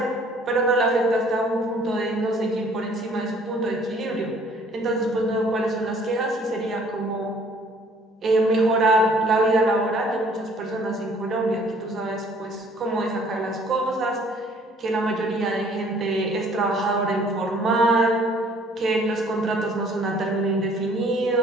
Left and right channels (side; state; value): both; normal; correlation 0.57